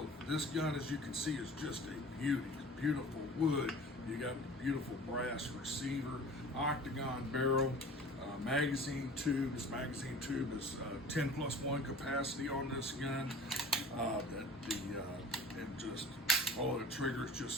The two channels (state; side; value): normal; both; correlation 0.42